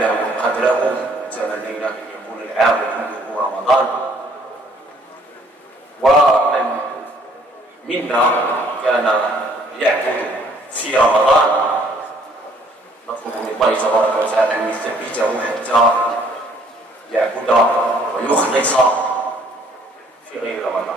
قدره تمنينا أن يكون العام كله رمضان. ومن منا كان يعبد في رمضان نطلب من الله تبارك وتعالى أن يثبته حتى يعبد ويخلص في غير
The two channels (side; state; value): both; normal; correlation 0.62